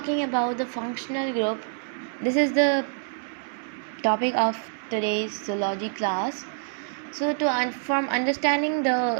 about the functional group, this is the topic of today's zoology class. So from understanding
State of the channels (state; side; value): silent; left; 61 dB below the other